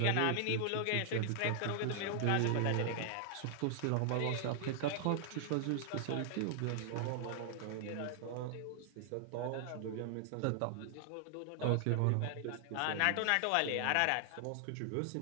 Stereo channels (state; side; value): different; both; correlation 0.00